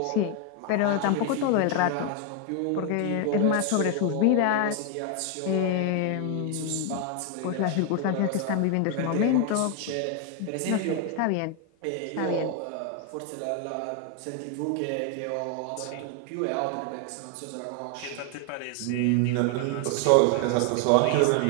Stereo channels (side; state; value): both; different; correlation 0.00